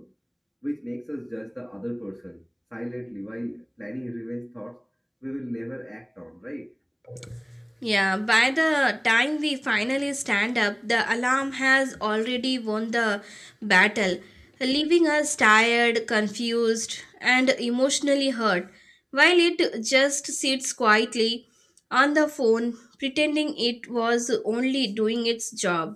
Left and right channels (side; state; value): both; identical; correlation 1.00